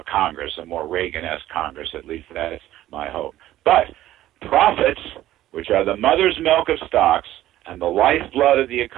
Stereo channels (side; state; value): left; quieter; 14.1 dB